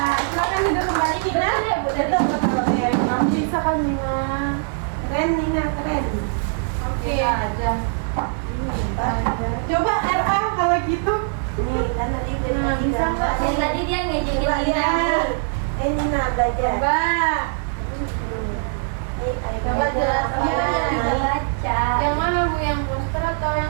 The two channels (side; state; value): left; silent; digital silence